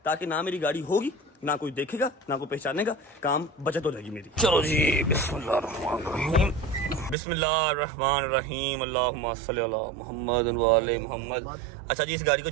ताकि ना मेरी गाड़ी होगी, ना कोई देखेगा, ना कोई पहचानेगा, काम बचत हो जाएगी मेरी। चलो जी, बिस्मिल्लाहिर्रहमानिर्रहीम बिस्मिल्लाहिर्रहमानिर्रहीम अल्लाहुम्मा सल्ली अला मुहम्मद व आले मुहम्मद। अच्छा जी, इस गाड़ी को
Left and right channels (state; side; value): drops out; left; at 7.2 s